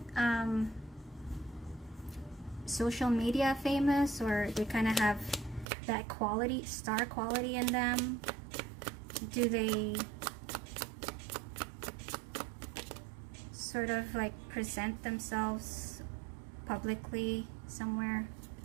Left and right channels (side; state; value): left; drops out; at 5.7 s